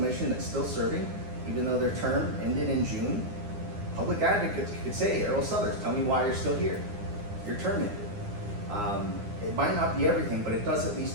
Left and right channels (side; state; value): left; late; 9.8 ms